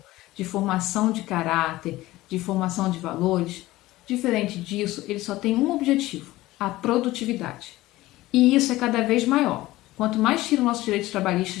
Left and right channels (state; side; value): quieter; right; 17.6 dB